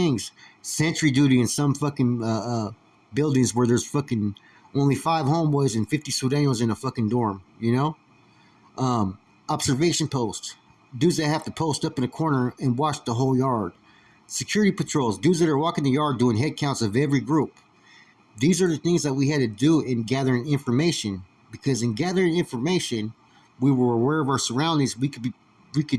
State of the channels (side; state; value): both; identical; correlation 1.00